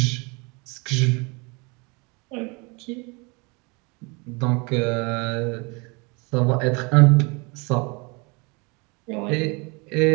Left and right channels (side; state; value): left; quieter; 29.2 dB